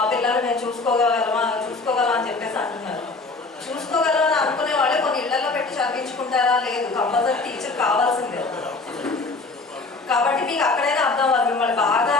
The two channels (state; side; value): quieter; right; 3.7 dB